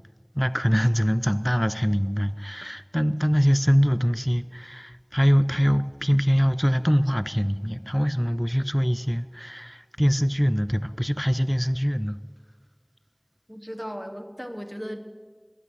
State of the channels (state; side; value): identical; both; correlation 1.00